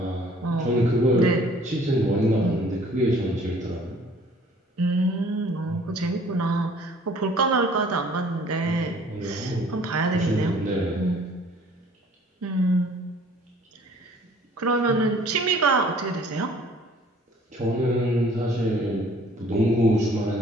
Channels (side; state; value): both; normal; correlation 0.54